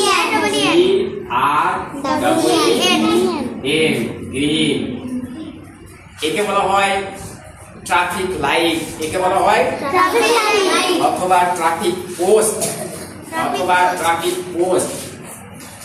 আর এন, গ্রিন। একে বলা হয় ট্রাফিক লাইট, একে বলা হয় অথবা ট্রাফিক পোস্ট, অথবা ট্রাফিক পোস্ট।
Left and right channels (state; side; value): identical; both; correlation 1.00